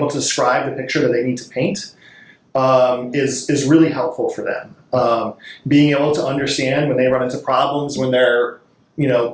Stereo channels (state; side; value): identical; both; correlation 1.00